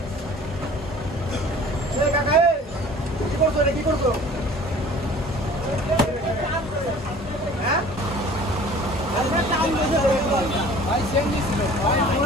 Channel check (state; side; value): normal; both; correlation 0.48